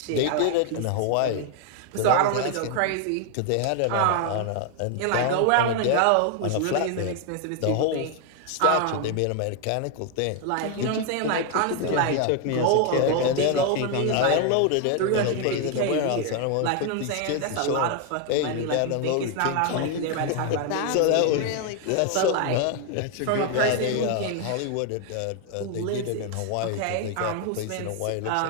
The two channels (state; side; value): different; both; correlation 0.01